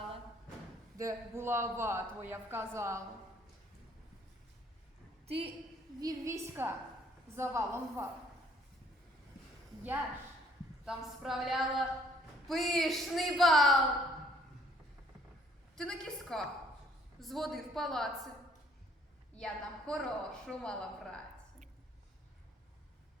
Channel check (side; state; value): both; normal; correlation 0.61